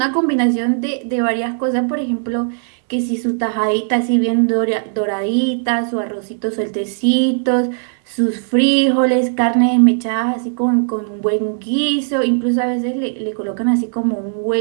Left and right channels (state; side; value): silent; left; 62 dB below the other